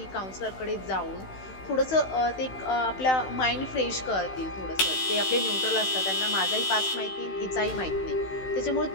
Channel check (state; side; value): late; right; 16 ms